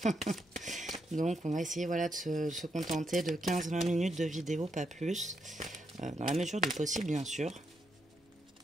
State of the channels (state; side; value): normal; both; correlation 0.79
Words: Donc on va essayer voilà, de se contenter de 15-20 minutes de vidéo, pas plus. Dans la mesure du possible, bien sûr.